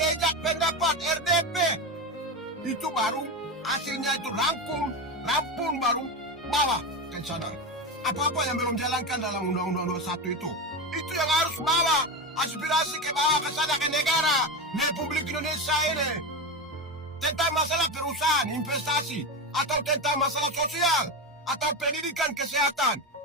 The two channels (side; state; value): both; normal; correlation 0.17